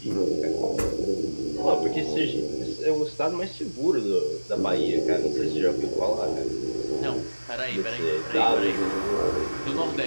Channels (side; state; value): both; inverted; correlation -1.00